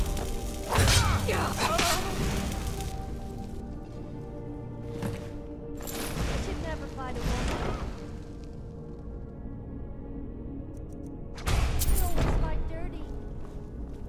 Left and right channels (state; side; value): identical; both; correlation 1.00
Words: I should never fight a woman. I always like dirty.